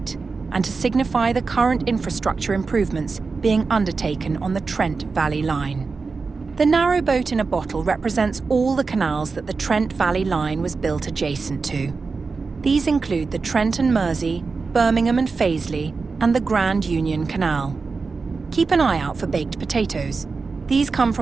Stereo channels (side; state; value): left; quieter; 4.4 dB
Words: and to signify the current infrastructure improvements being undertaken on the Trent Valley Line. The narrow boat in a bottle represents all the canals that the Trent Valley Line was built adjacent to. These include the Trent and Mersey, Birmingham and Fazeley, and the Grand Union Canal. Keep an eye out for baked potatoes. These come